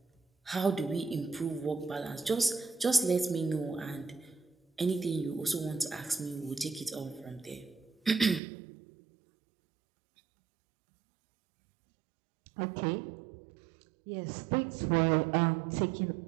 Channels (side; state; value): left; drops out; at 8.4 s